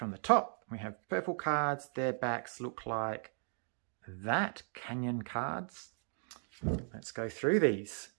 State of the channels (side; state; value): left; silent; 53 dB below the other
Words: the top. We have purple cards. Their backs look like that. Canyon cards. Let's go through these.